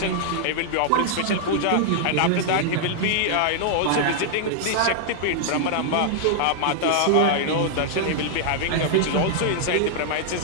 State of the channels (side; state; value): both; different; correlation -0.01